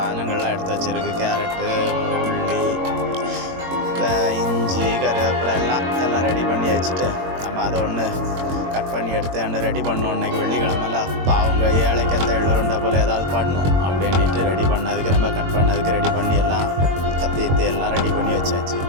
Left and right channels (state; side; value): late; left; 22 ms